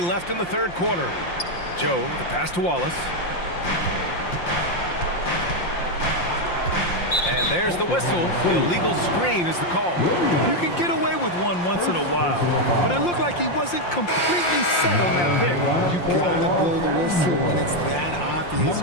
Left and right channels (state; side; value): late; right; 5.7 ms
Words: left in the third quarter. Joe, the pass to Wallace. And there's the whistle. The illegal screen is the call. You can get away with one once in a while, but it looked like he wasn't completely set on that pick. You gotta blow the whistle when it's that obvious.